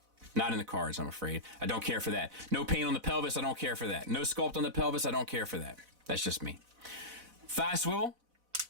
Not in the cards, I'm afraid. I don't care for that. No paint on the pelvis, I don't care for that. No sculpt on the pelvis, I don't care for that. That's just me. Thigh swivel.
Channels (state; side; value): late; left; 4.0 ms